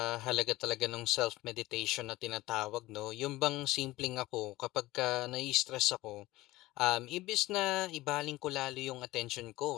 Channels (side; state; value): right; quieter; 18.2 dB